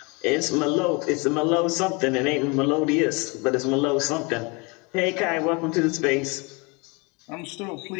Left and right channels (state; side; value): quieter; right; 29.3 dB